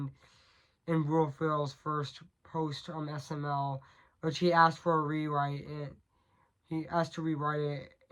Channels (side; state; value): both; identical; correlation 1.00